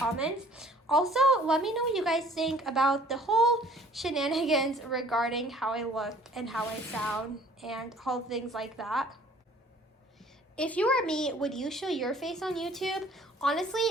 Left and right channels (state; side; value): normal; both; correlation 0.54